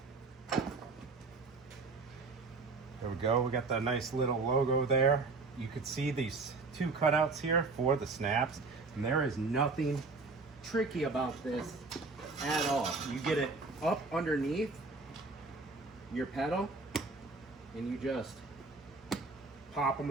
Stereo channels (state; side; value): quieter; left; 3.9 dB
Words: There we go. We got the nice little logo there. You could see these two cutouts here for the snaps, and there is nothing tricky about this at all. You get it up underneath your pedal and you just pop them